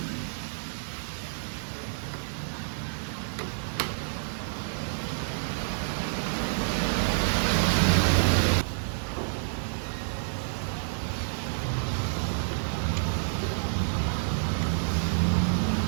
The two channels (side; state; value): left; silent; 59 dB below the other